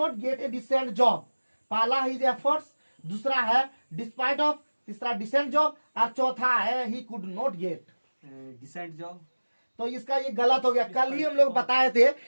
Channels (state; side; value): inverted; both; correlation -1.00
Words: get a decent job. पहला हिज एफर्ट्स, दूसरा है डिस्पाइट ऑफ, तीसरा डिसेंट जॉब, और चौथा है he could not get decent job. तो इसका ये गलत हो गया। कल ही हम लोग बताए थे